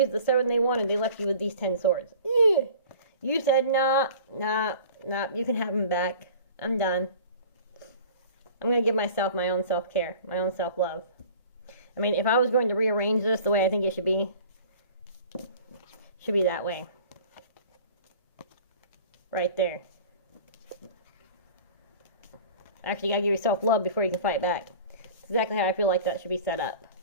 are the 7 they wanted. They left you with these 10 swords. You said, nah, you can have them back. I'm done. I'm going to give myself my own self-care, my own self-love. I mean, if I was going to rearrange this the way I think it should be that way. Right there. Actually, you gotta give yourself love before you can fight back. That's exactly how I feel like that should be set up.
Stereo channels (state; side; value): inverted; both; correlation -0.44